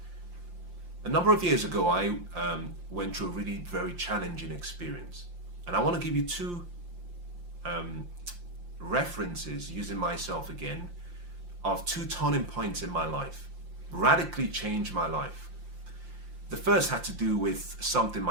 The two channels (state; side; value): late; left; 5.7 ms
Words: A number of years ago, I went through a really very challenging experience. And I want to give you two references, using myself again, of two turning points in my life, radically changed my life. The first had to do with something